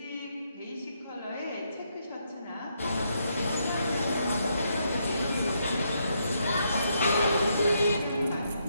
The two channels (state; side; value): inverted; both; correlation -0.77